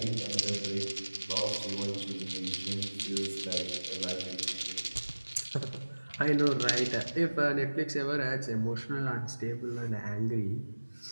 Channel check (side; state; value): both; inverted; correlation -1.00